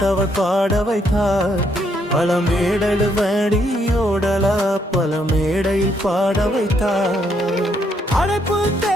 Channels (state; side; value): normal; both; correlation 0.73